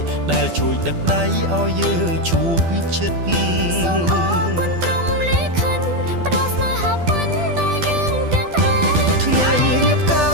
ដែលជួយដឹកដៃឲ្យយើងជួបជិតសូមអរគុណព្រមលេខិនផ្ដល់ស្នេហាពិនដល់យើងទាំងថ្ងៃរៀបកា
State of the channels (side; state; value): left; late; 12 ms